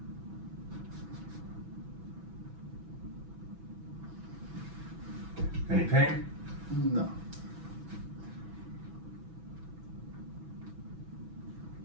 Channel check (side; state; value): left; late; 6.1 ms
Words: Any pain? No.